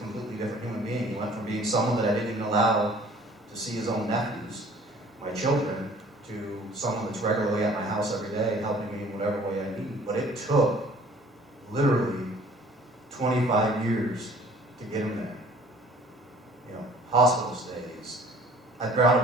different human being. He went from being someone that I didn't even allow to see his own nephews, my children, to someone that's regularly at my house every day, helping me in whatever way I need. But it took literally 25 years to get him there. You know, hospital stays.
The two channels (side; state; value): both; normal; correlation 0.52